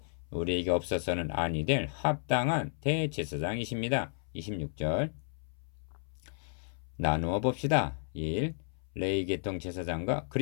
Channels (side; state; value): right; silent; 56 dB below the other